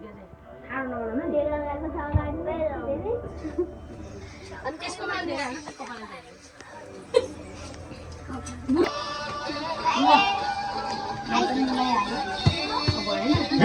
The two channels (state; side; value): identical; both; correlation 1.00